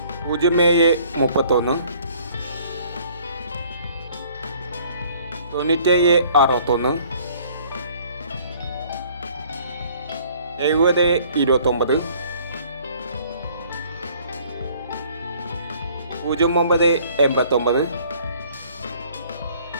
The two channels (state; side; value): inverted; both; correlation -0.57